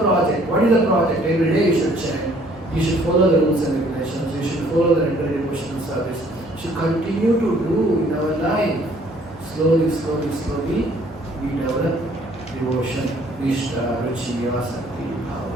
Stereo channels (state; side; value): normal; both; correlation 0.60